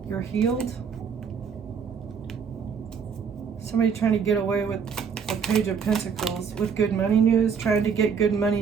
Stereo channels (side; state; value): left; quieter; 6.4 dB